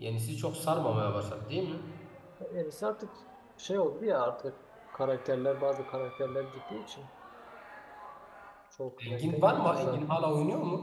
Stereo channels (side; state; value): both; identical; correlation 1.00